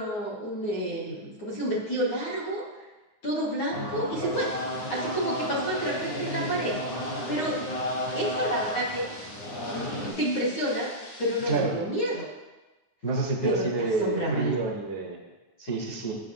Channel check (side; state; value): right; late; 9.6 ms